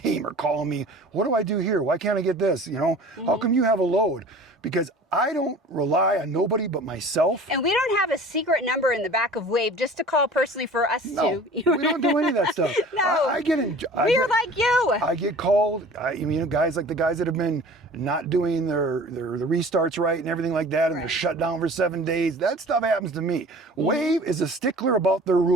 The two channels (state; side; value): normal; both; correlation 0.43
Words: are calling me, what do I do here? Why can't I get this? How come you have a load? Because I don't rely on nobody but myself. And we don't have a secret number in the back of Wave just to call personally for us No, to. we don't do any of that stuff. No. We're like you. I get called. Guys like the guys that have been not doing the restarts right and everything like that, and they're shut down for 7 days. That stuff happens to me. Wave is a stickler about their